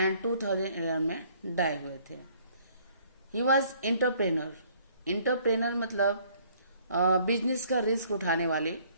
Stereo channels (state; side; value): inverted; both; correlation -0.60